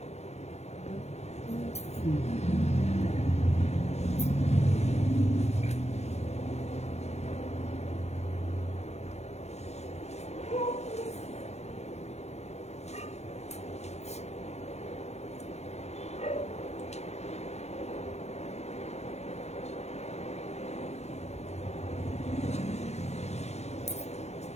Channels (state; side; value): late; right; 0.31 ms